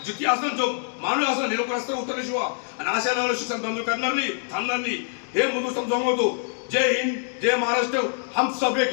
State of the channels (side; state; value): right; silent; digital silence